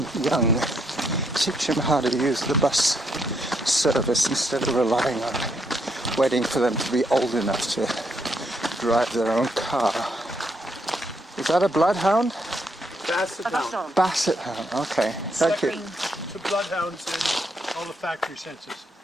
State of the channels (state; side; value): normal; both; correlation 0.75